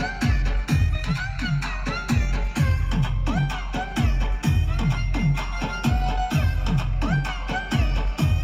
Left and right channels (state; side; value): identical; both; correlation 1.00